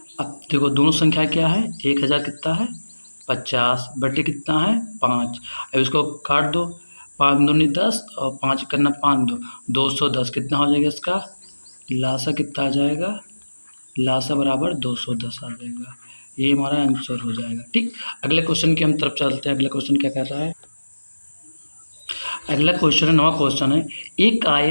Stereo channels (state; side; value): inverted; both; correlation -1.00